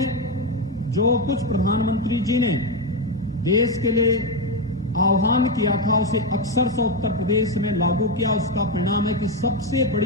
जो कुछ प्रधानमंत्री जी ने देश के लिए आह्वान किया था उसे अक्षरशः उत्तर प्रदेश में लागू किया। उसका परिणाम है कि सबसे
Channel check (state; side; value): normal; both; correlation 0.09